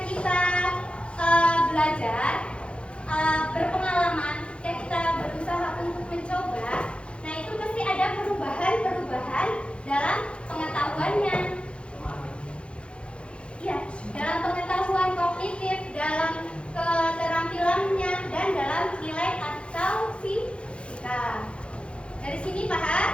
kita belajar, berpengalaman, ketika kita berusaha untuk mencoba, nah itu pasti ada perubahan-perubahan dalam pengetahuannya. Ya, dalam pengetahuan kognitif, dalam keterampilannya, dan dalam nilai atau sikap. Dari sini paham?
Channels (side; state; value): right; late; 0.058 ms